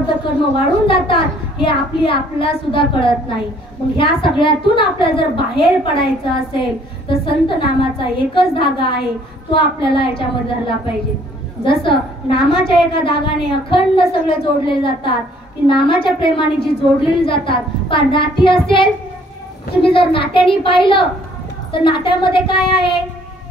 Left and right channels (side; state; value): both; normal; correlation 0.60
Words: कर्म वाढून जातात, हे आपल्याला सुद्धा कळत नाही. मग ह्या सगळ्यातून आपल्याला जर बाहेर पडायचं असेल तर संत नामाचा एकच धागा आहे, तो आपल्याला याच्यामध्ये धरला पाहिजे. जसं नामाच्या एका धागाने अखंड सगळे जोडले जातात, की नामाच्या प्रेमाने जी जोडलेली जातात. पण नाती असेल, तुम्ही जर नात्याने पाहिलं तर नात्यामध्ये काय आहे?